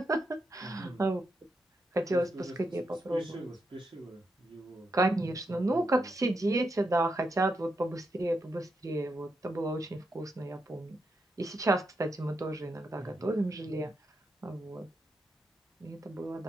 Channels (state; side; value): normal; both; correlation 0.84